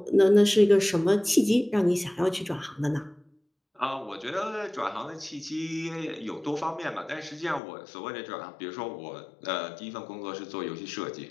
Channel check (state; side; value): drops out; right; at 7.6 s